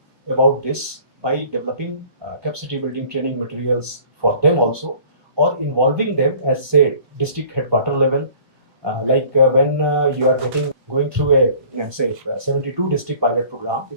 about this by developing capacity building training materials for them also, or involving them as say district headquarter level. When you are going through a say 72 district pilot program,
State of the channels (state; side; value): late; left; 1.3 ms